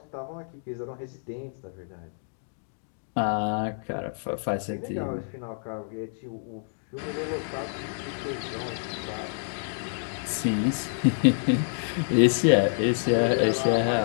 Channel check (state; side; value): silent; right; digital silence